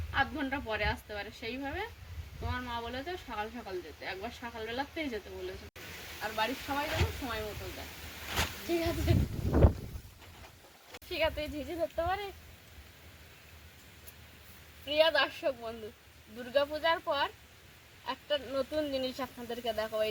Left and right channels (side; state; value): both; identical; correlation 1.00